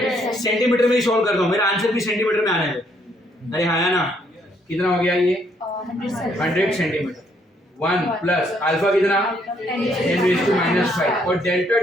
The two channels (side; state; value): both; normal; correlation 0.70